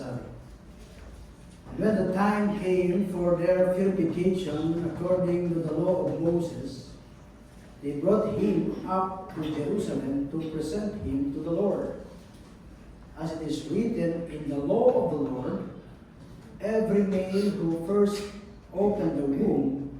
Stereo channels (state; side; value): identical; both; correlation 1.00